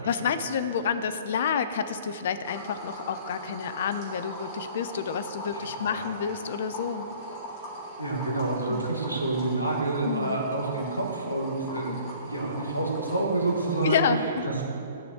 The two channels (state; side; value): inverted; both; correlation -0.52